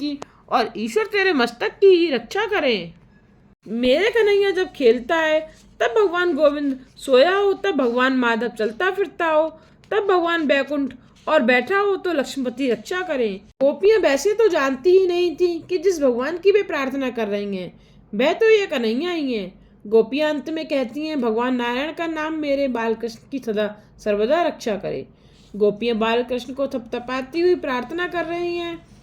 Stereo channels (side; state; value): both; identical; correlation 1.00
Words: और ईश्वर तेरे मस्तक की रक्षा करें। मेरे कन्हैया जब खेलता है तब भगवान गोविंद सोया हो, तब भगवान माधव चलता फिरता हो, तब भगवान बैकुंठ और बैठा हो तो लक्ष्मीपति रक्षा करें। गोपियां वैसे तो जानती ही नहीं थी कि जिस भगवान की वे प्रार्थना कर रही हैं वह तो ये कन्हैया ही है। गोपियां अंत में कहती हैं, भगवान नारायण का नाम मेरे बालकृष्ण की सदा सर्वदा रक्षा करे। गोपियां बालकृष्ण को थपथपाती हुई प्रार्थना कर रही हैं।